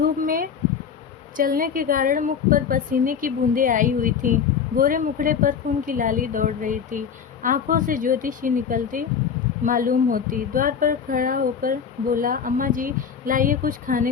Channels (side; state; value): right; quieter; 7.1 dB